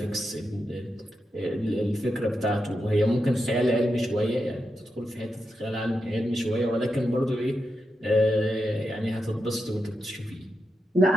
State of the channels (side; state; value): both; normal; correlation 0.87